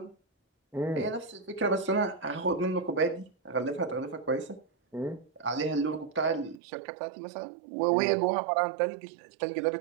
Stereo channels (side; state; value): left; drops out; at 6.6 s